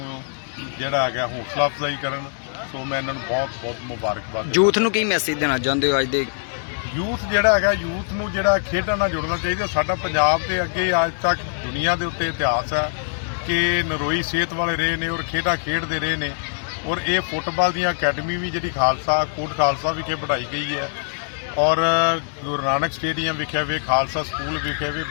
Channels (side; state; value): right; silent; 64 dB below the other